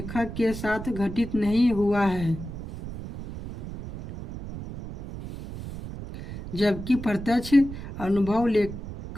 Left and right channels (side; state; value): right; noise; rumble, 10 dB below the sound